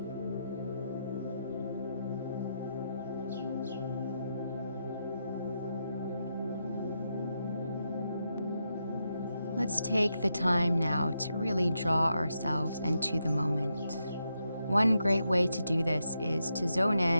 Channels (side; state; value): both; inverted; correlation -0.83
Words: Let's take the time now to really draw ourselves into the moment. One great way to do this is to zone